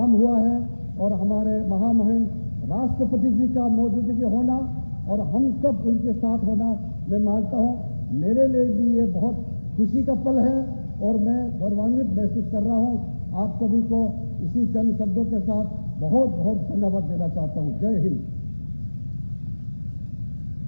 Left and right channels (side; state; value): both; inverted; correlation -1.00